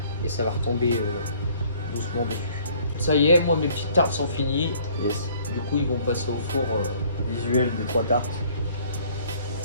et ça va retomber doucement dessus. Ça y est, moi, mes petites tartes sont finies. Yes. Du coup, ils vont passer au four. Visuel des 3 tartes.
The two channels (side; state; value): both; inverted; correlation -0.58